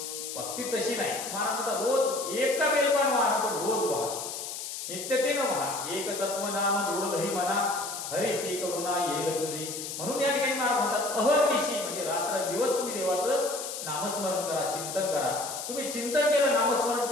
भक्ती तशी नाही. महाराज म्हणतात रोज एक का बेलपान व्हा, पण रोज व्हा, नित्यतेनं व्हा. एक तत्व नाम दृढधरी म्हणा, हरिसी करुणा येईल तुझी. म्हणून या ठिकाणी महाराज म्हणतात अहर्निशी, म्हणजे रात्र दिवस तुम्ही देवाचं नामस्मरण करा, चिंतन करा. तुम्ही चिंतन केलं, नामस्मरण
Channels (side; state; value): left; noise; hiss, 7 dB below the sound